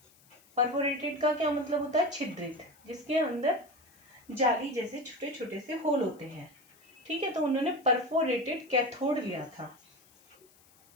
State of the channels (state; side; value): noise; left; hiss, 29 dB below the sound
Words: परफोरेटेड का क्या मतलब होता है? छिद्रित, जिसके अंदर जाली जैसे छोटे छोटे से होल होते हैं, ठीक है। तो उन्होंने परफोरेटेड कैथोड लिया था